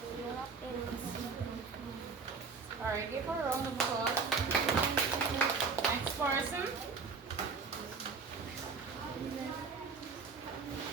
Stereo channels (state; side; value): quieter; left; 5.0 dB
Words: All right, give her a round of applause. Next person.